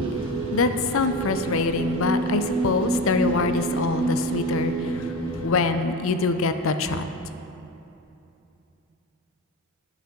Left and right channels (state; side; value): normal; both; correlation 0.24